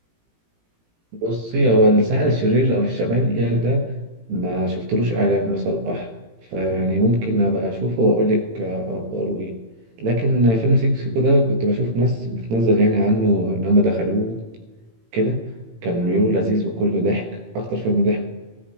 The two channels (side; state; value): left; late; 18 ms